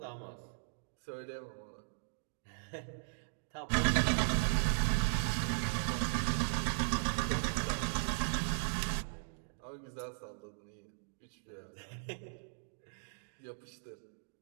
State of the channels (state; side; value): silent; left; digital silence